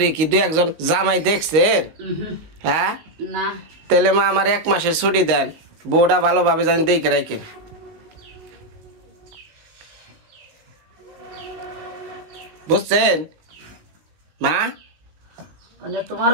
কি দু একজন জামাই দেখছেন? হ্যাঁ, না। তাহলে মা আমার 1 মাসের ছুটি দেন, বউটা ভালোভাবে জানি দেখে রাখেন। বুঝছেন মা? মানে তোমার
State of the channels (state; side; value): late; left; 19 ms